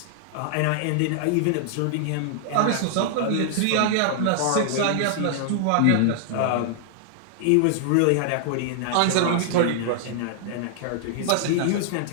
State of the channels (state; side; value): different; both; correlation -0.01